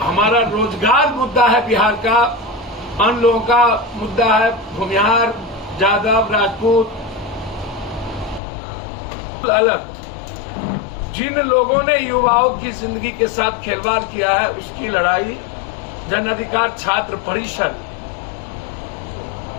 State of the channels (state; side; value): drops out; right; at 8.4 s